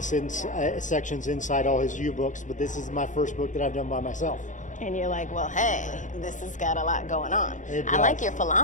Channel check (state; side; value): late; right; 0.36 ms